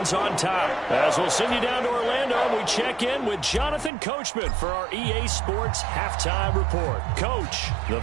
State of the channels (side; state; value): left; drops out; at 3.9 s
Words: on top. As we'll send you down to Orlando, we check in with Jonathan Coachman for our EA Sports Halftime Report. Coach, the